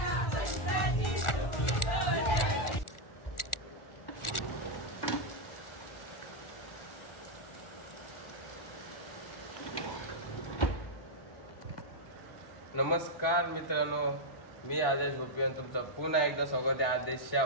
नमस्कार मित्रांनो, मी आदेश गोपी आणि तुमचा पुन्हा एकदा स्वागत आहे आदेशच्या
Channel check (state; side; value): late; right; 1.4 ms